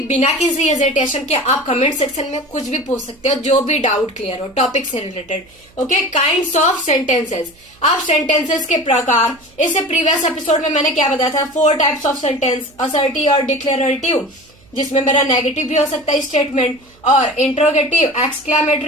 बिना किसी हेजिटेशन के आप कमेंट सेक्शन में कुछ भी पूछ सकते हो, जो भी डाउट क्लियर हो टॉपिक से related. Okay, kinds of sentences. अब सेंटेंसेस के प्रकार, इससे प्रीवियस एपिसोड में मैंने क्या बताया था? 4 टाइप्स ऑफ सेंटेंस, असर्टिव और डिक्लेरेटिव, जिसमें मेरा नेगेटिव भी हो सकता है स्टेटमेंट, और इंट्रोगेटिव,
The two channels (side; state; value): right; noise; hum, 29 dB below the sound